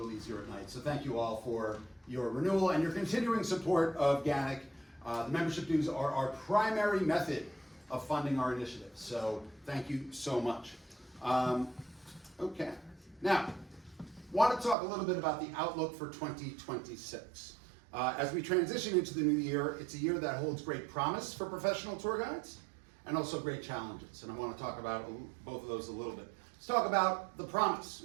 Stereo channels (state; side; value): drops out; left; at 14.8 s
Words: easier at night. So thank you all for your renewal and your continuing support of GANYC. The membership dues are our primary method of funding our initiatives. So thank you so much. Okay. Now, want to talk a little bit about the outlook for 2026. As we transition into the new year, it's a year that holds great promise for professional tour guides and also great challenges. And I want to talk about both of those a little bit. Let's talk about the